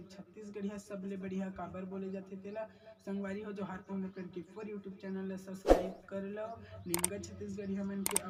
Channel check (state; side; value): identical; both; correlation 1.00